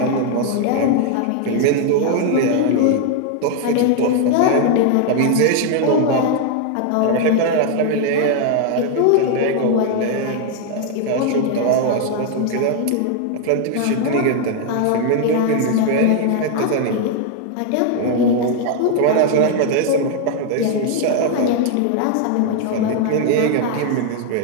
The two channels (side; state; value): both; different; correlation 0.00